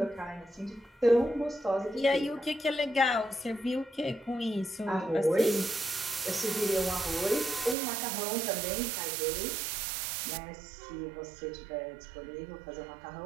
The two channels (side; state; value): left; drops out; at 7.8 s